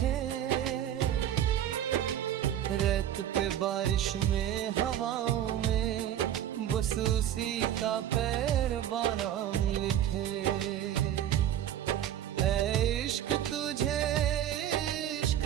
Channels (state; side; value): quieter; left; 11.1 dB